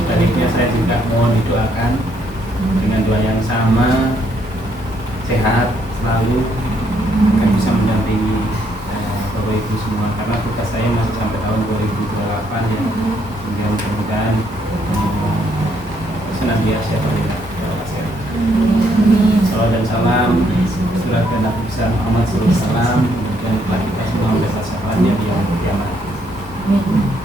saya juga mohon didoakan dengan doa yang sama, sehat selalu, akan bisa mendampingi Bapak Ibu semua, karena tugas saya masih sampai tahun 2028 ya. Sehingga mudah-mudahan senantiasa berlimpah. Salam dan salam surat Nabi besar Muhammad SAW, dan telah kita semua mendapat syafaatnya di yaumul kiamat.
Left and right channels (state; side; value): normal; both; correlation 0.71